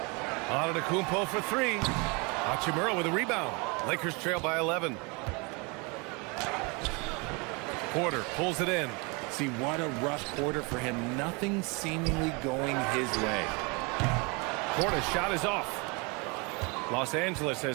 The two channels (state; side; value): quieter; left; 29.6 dB